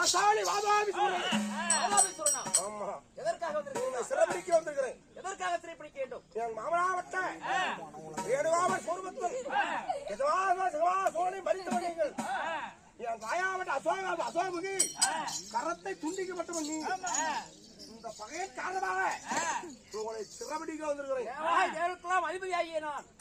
வாதாபி சூரனா? ஆமா எதற்காக வந்திருக்கீங்க? சிறப்பிடிக்க வந்திருக்கிறேன். எதற்காக சிறைப்பிடிக்க வேண்டும்? என் மாமனாவட்ட வேணுவாமல் சோர்வத்தில் சோழனை மறித்து நீங்கள் என் தாயாவட்ட அசோமுகி கரத்தை துண்டிக்கப்பட்டவன் நீ. இந்த பகையின் காரணமாக உங்களை சிறப்பிடிக்க வந்திருக்கிறேன். தேவருக்கெல்லாம் அதிபதியாகிய நான்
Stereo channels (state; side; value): identical; both; correlation 1.00